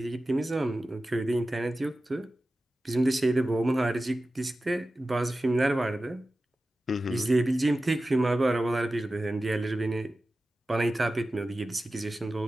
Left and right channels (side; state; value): both; normal; correlation 0.95